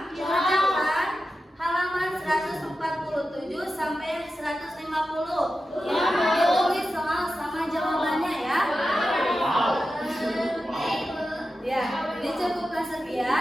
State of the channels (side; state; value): both; normal; correlation 0.92